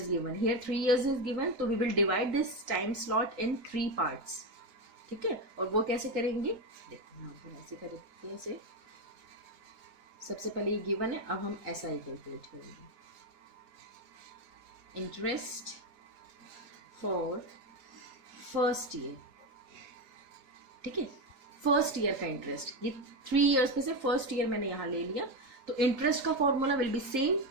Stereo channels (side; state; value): left; late; 3.8 ms